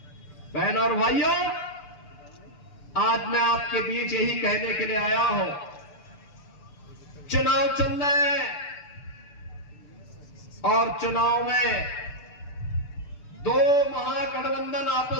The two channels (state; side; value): late; right; 6.8 ms